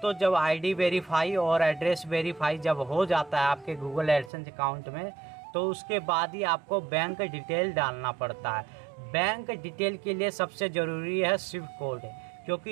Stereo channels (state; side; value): drops out; left; at 4.3 s